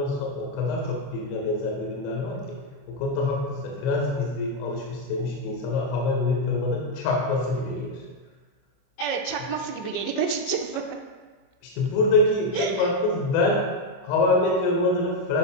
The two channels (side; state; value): right; late; 22 ms